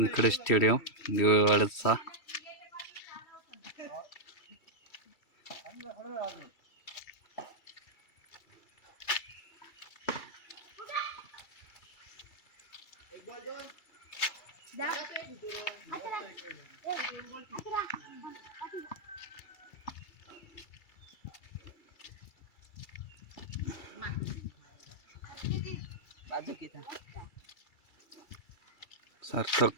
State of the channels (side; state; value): right; late; 2.3 ms